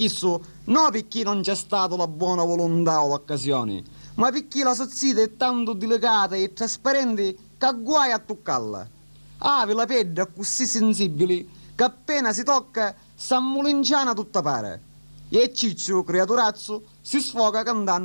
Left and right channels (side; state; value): both; inverted; correlation -1.00